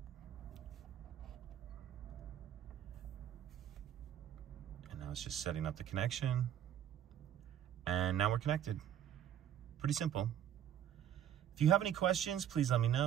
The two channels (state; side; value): quieter; left; 10.3 dB